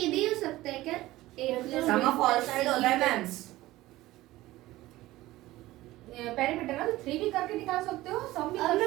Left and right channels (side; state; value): left; quieter; 17.2 dB